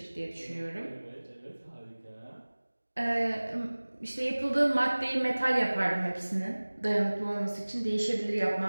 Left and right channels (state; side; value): inverted; both; correlation -1.00